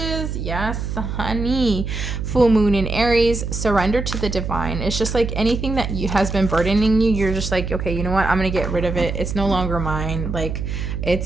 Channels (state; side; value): noise; right; hum, 4 dB below the sound